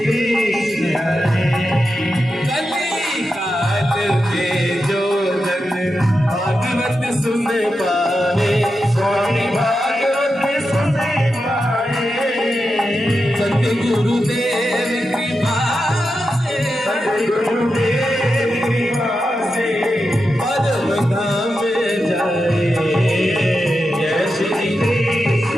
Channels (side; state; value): both; normal; correlation 0.89